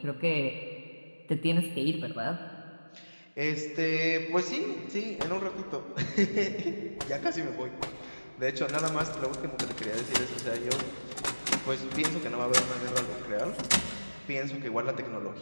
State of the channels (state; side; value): inverted; both; correlation -1.00